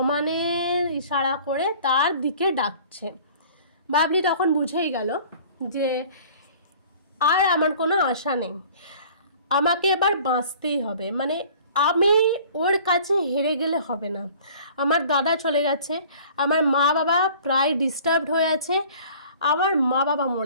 ইশারা করে তার দিকে ডাকছে। বাবলি তখন বুঝেই গেল যে আর আমার কোনো আশা নেই, আমাকে এবার বাঁচতেই হবে, মানে আমি ওর কাছে হেরে গেলে হবে না। আমার দাদা চলে গেছে, আমার মা বাবা প্রায় ডিস্টার্বড হয়ে আছে, আমার মা বাবা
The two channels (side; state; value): both; inverted; correlation -0.49